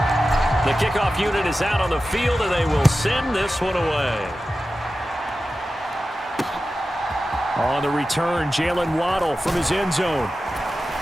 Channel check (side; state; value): both; normal; correlation 0.94